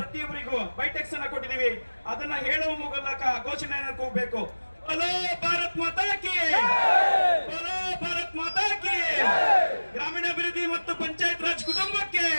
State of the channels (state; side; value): inverted; both; correlation -1.00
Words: ಬೈಟೆಕ್ಸ್ ಅನ್ನ ಕೊಟ್ಟಿದ್ದೀವಿ. ಅದನ್ನ ಹೇಳುವ ಮೂಲಕ ಘೋಷಣೆಯನ್ನು ಕೂಗಬೇಕು. ಬಲೋ ಭಾರತ್ ಮಾತಾ ಕಿ, ಬಲೋ ಭಾರತ್ ಮಾತಾ ಕಿ. ಗ್ರಾಮೀಣಾಭಿವೃದ್ಧಿ ಮತ್ತು ಪಂಚಾಯತ್ ರಾಜ್ ಕುಟುಂಬಕ್ಕೆ,